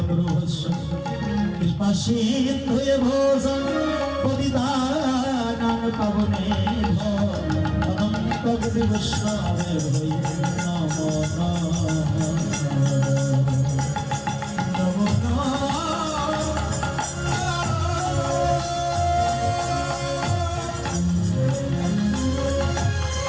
কৃপাশে হয়ে ভোজন পরিদান পাবনে অনন্ত গুরু বৈষ্ণবে হই নম নম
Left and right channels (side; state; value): both; identical; correlation 1.00